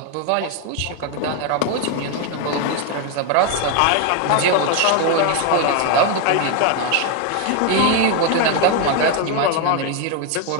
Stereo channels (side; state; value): both; different; correlation 0.01